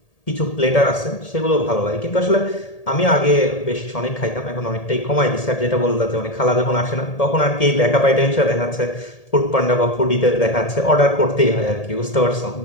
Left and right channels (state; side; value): late; right; 1.8 ms